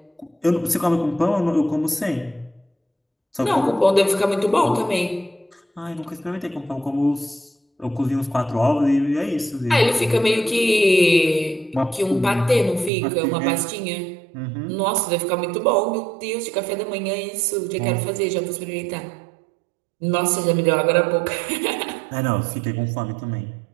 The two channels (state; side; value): drops out; left; at 12.9 s